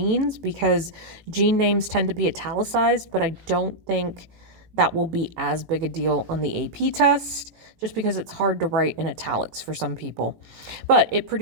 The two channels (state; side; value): late; left; 18 ms